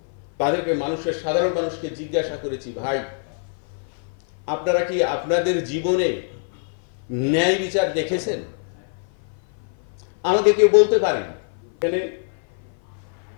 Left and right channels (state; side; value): silent; right; 56 dB below the other